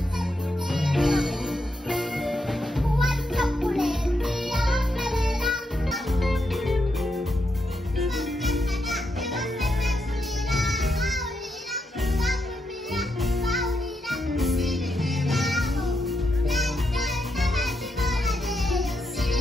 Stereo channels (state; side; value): normal; both; correlation 0.83